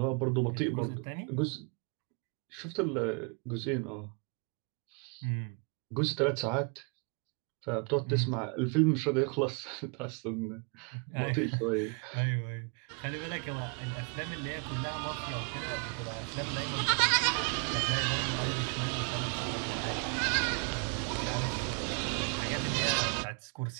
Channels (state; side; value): quieter; left; 36.5 dB